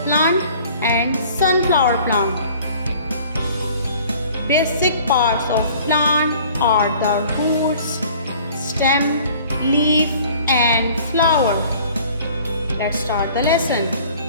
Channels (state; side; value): inverted; both; correlation -0.51